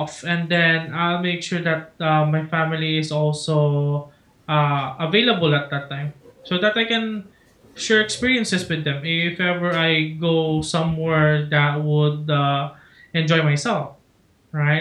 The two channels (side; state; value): both; identical; correlation 1.00